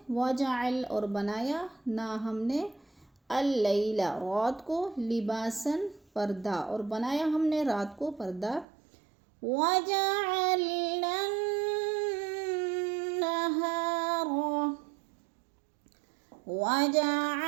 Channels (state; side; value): drops out; left; at 8.7 s